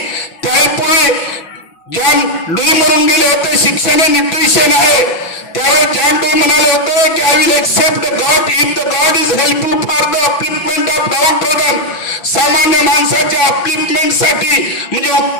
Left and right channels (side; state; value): right; late; 6.0 ms